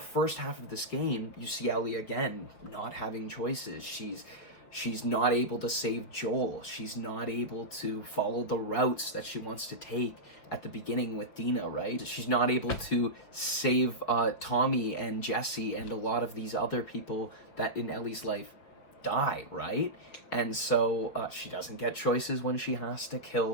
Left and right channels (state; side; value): late; right; 5.3 ms